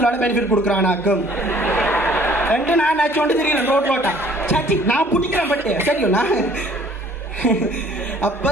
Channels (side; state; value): both; normal; correlation 0.56